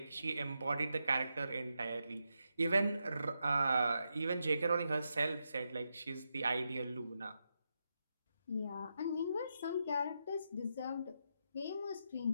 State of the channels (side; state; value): both; inverted; correlation -0.85